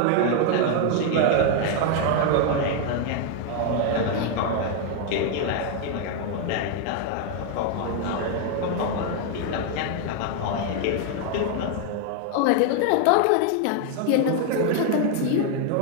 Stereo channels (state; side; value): different; both; correlation 0.00